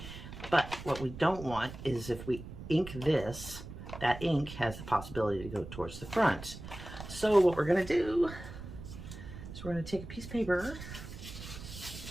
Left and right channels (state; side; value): noise; right; rumble, 12 dB below the sound